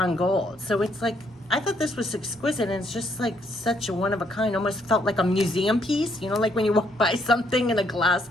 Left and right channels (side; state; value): both; normal; correlation 0.71